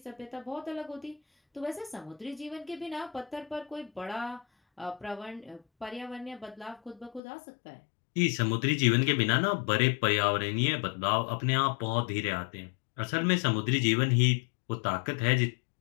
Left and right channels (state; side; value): drops out; right; at 7.2 s